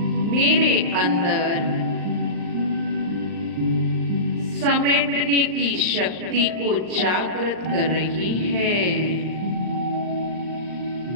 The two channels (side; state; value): left; late; 39 ms